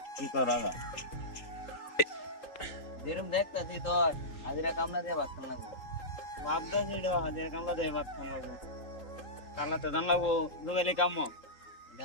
কি করো? যেরকম দেখতাছি তোর হাজিরা কামলা দিয়ে ভাত খান লাগবো। ভাবদা সেটা হাজার কামলা দেয় ভাত খান লাগবো, কালাতে দান লাগবো দুবেলি কাম।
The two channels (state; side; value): late; right; 3.8 ms